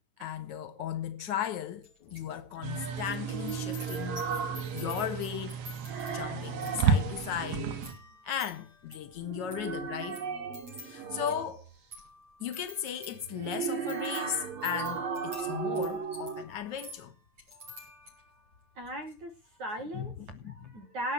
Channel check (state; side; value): late; left; 9.3 ms